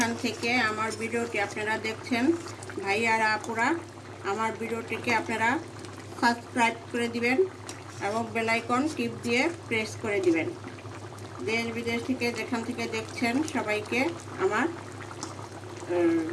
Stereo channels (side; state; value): both; identical; correlation 1.00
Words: থেকে আমার ভিডিওটি আপনারা দেখছেন, ভাই আর আপুরা, আমার ভিডিওটিকে আপনারা সাবস্ক্রাইব করে দিবেন এবং বেল আইকন টিপ দিয়ে প্রেস করে দিবেন। দেশ বিদেশ থেকে যেখান থেকে দেখছেন সবাইকে আমার